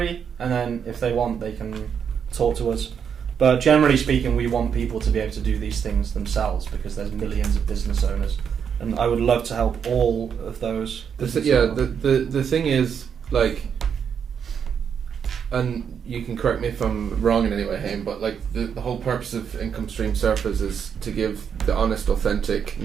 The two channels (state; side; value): quieter; left; 7.4 dB